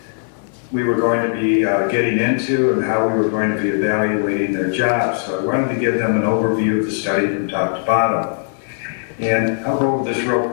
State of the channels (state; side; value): silent; right; digital silence